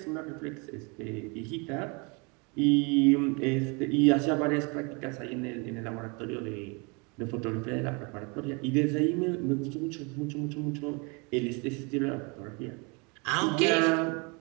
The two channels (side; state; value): left; quieter; 30.9 dB